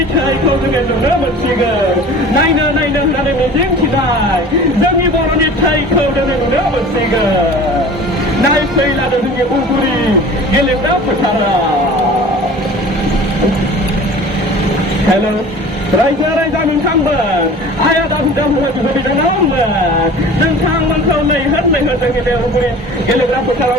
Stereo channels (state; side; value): normal; both; correlation 0.41